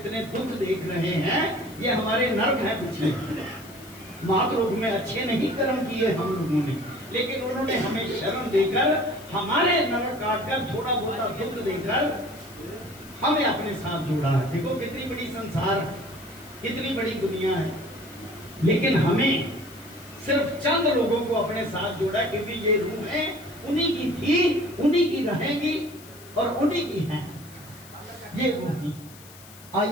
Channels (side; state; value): left; noise; hiss, 20 dB below the sound